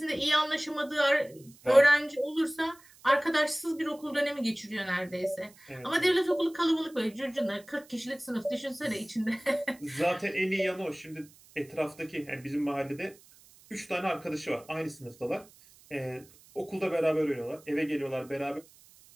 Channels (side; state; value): right; noise; hiss, 25 dB below the sound